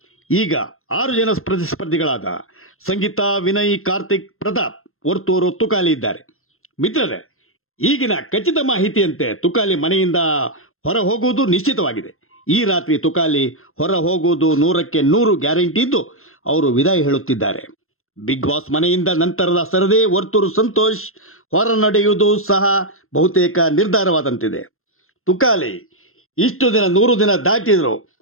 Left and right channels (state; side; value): late; right; 0.61 ms